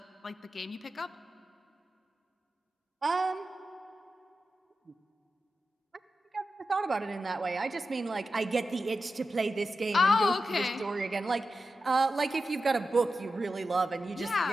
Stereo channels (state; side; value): normal; both; correlation 0.91